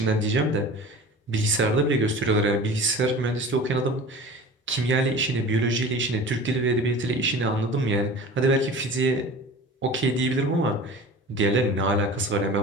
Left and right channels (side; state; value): both; normal; correlation 0.38